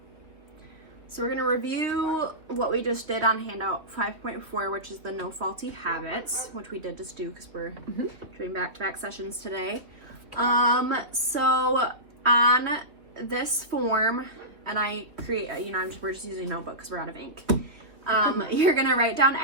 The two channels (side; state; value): left; late; 3.1 ms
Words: we're going to review what we just did on handout 5.4, which is the no faulty habits, which we did just do because we're doing back-to-back sessions today. So on this form, and I create, we're just using a notebook because we're out of ink. You're going to write down